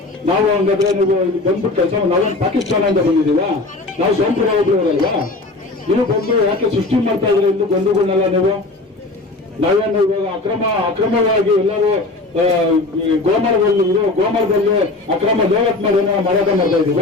ನಾವು ಹಂಗಾದ್ರೆ ನೀವು ಬಂದ್ಬಿಟ್ಟು ಕೆಲಸ ನಾವೇನು ಪಾಕಿಸ್ತಾನದಿಂದ ಬಂದಿದ್ದೀವ? ನಾವು ಸ್ವಂತ ಹೋಗ್ಲಿವರಲ್ವಾ? ನೀವು ಬಂದು ಯಾಕೆ ಸೃಷ್ಟಿ ಮಾಡ್ತಾ ಇದ್ರೆ ಇಲ್ಲಿ ಬಂಧುಗಳನ್ನೆಲ್ಲ ನೀವು? ನಾವೇನು ಇವಾಗ ಅಕ್ರಮವಾಗಿ ಎಲ್ಲರೂ ಗೋಮರದಲ್ಲಿ ಅಕ್ರಮ ದೇವತ್ ಮಾಡಿ ಏನೋ ಮಾರಾಟ ಮಾಡ್ತಾ ಇದೀವ?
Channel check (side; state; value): right; quieter; 3.1 dB